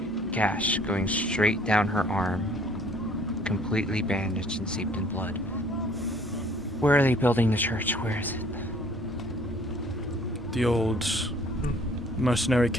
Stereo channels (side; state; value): both; normal; correlation 0.57